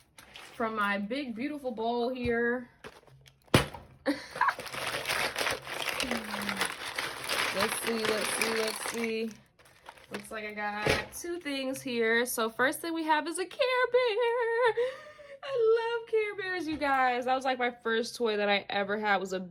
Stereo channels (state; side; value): identical; both; correlation 1.00